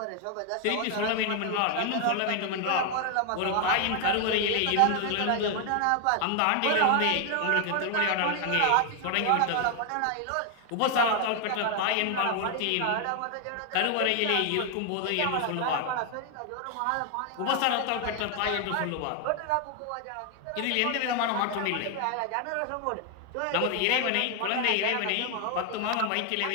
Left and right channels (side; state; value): both; different; correlation 0.00